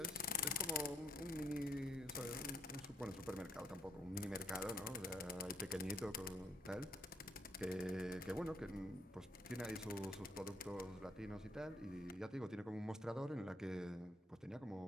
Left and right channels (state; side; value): normal; both; correlation 0.72